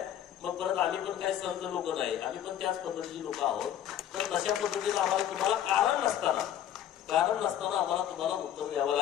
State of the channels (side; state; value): right; quieter; 10.8 dB